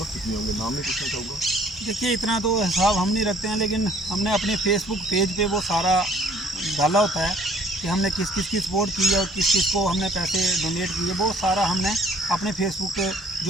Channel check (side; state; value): both; normal; correlation 0.59